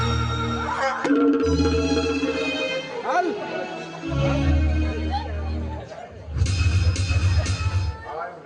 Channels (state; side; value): identical; both; correlation 1.00